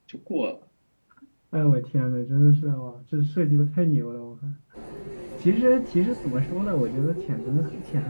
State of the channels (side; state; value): both; inverted; correlation -1.00